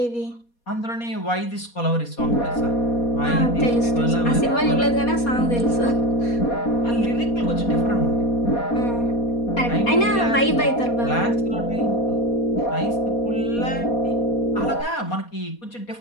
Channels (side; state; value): right; late; 4.2 ms